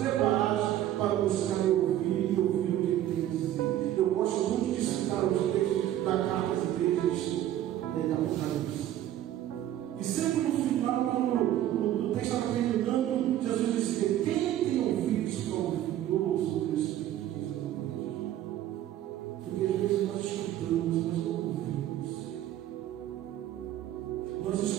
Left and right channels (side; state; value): left; quieter; 12.4 dB